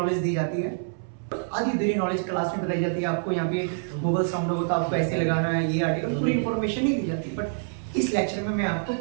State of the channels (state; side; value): silent; left; 61 dB below the other